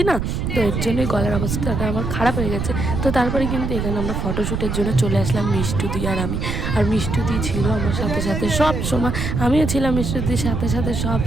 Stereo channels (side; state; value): right; noise; rumble, 2 dB below the sound